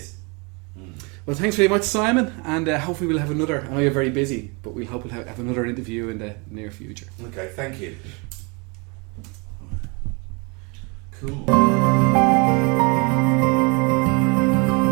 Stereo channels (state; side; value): quieter; left; 30.9 dB